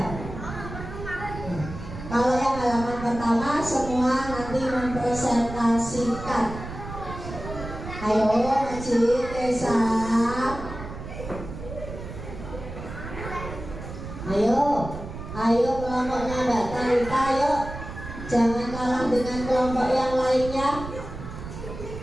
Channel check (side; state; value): right; noise; rumble, 10 dB below the sound